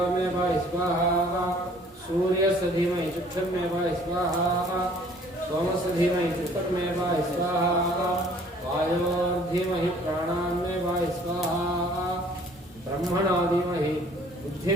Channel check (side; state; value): both; normal; correlation 0.55